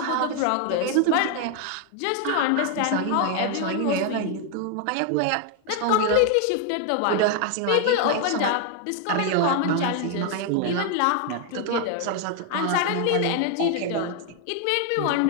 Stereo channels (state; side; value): different; both; correlation 0.00